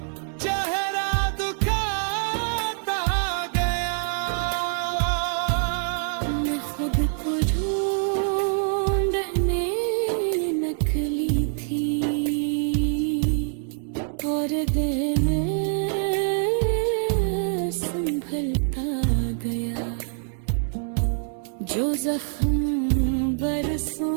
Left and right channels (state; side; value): silent; left; 62 dB below the other